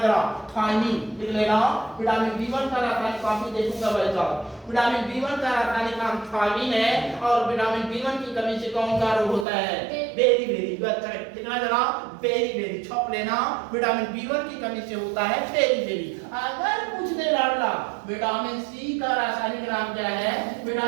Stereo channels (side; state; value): left; drops out; at 9.5 s